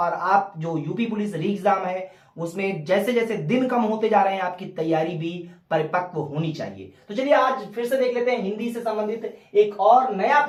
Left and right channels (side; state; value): both; identical; correlation 1.00